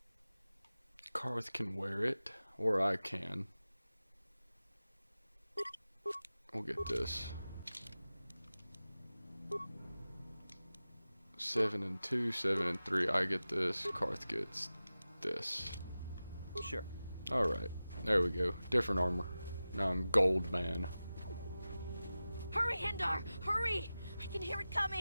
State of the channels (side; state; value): both; inverted; correlation -0.95